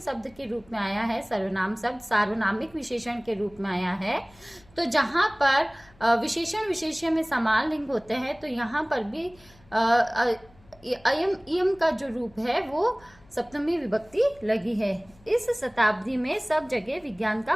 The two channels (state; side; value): noise; left; hum, 28 dB below the sound